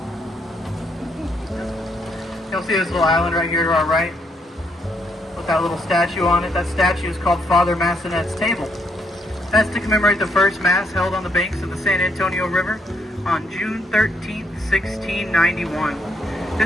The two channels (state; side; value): normal; both; correlation 0.74